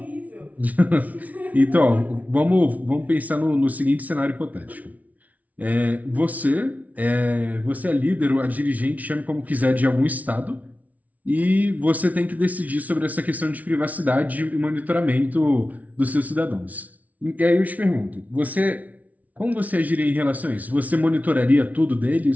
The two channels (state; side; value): late; left; 0.072 ms